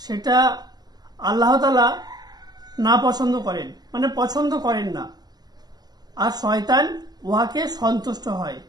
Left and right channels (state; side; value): late; left; 0.20 ms